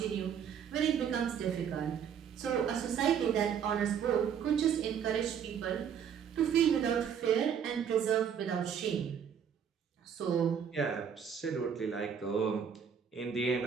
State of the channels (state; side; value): quieter; left; 7.9 dB